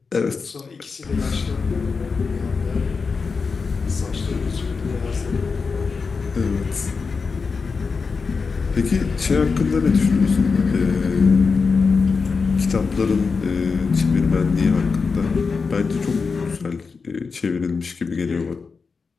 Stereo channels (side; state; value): right; quieter; 4.9 dB